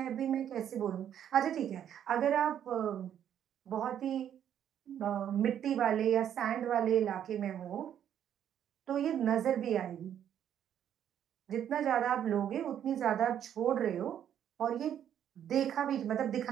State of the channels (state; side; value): quieter; left; 9.8 dB